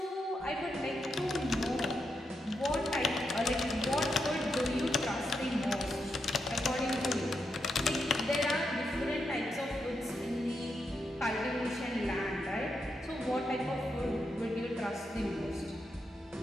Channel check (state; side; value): normal; both; correlation 0.83